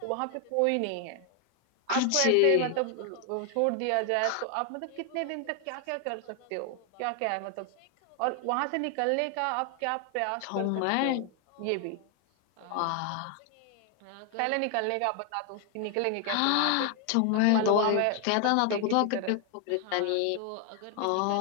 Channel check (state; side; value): different; both; correlation 0.00